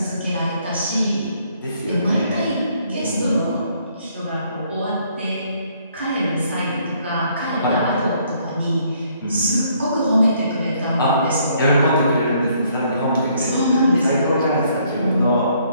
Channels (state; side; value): inverted; both; correlation -0.66